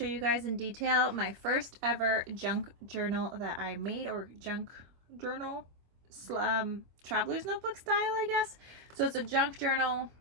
you guys in detail my first ever junk journal that I made, or junk journal, traveler's notebook style, I guess. So it's a junk journal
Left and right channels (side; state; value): left; late; 25 ms